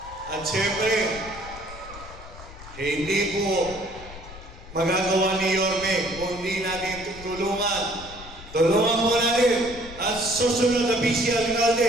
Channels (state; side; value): noise; left; rumble, 16 dB below the sound